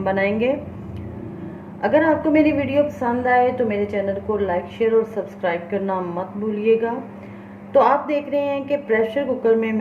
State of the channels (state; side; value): identical; both; correlation 1.00